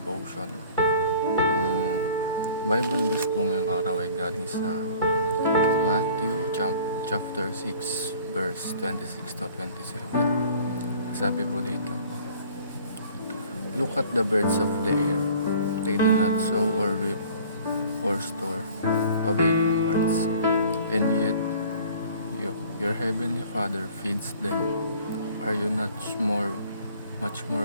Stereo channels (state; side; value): inverted; both; correlation -0.50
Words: Bible verse po ngayong araw ay galing sa Matthew chapter 6 verse 26 to 27. Sabi po dito, "Look at the birds of the air. They do not sow or reap or store away in barns, and yet your heavenly Father feeds them. Are you not much